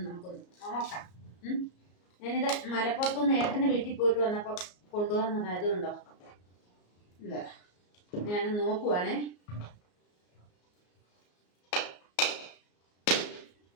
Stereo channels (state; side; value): late; right; 34 ms